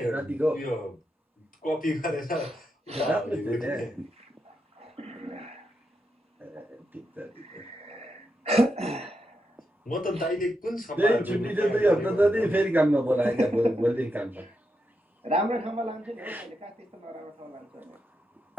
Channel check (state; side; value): normal; both; correlation 0.85